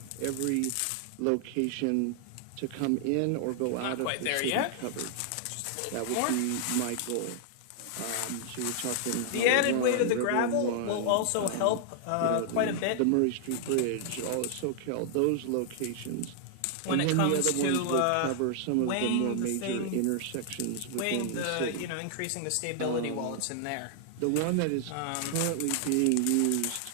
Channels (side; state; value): both; different; correlation -0.01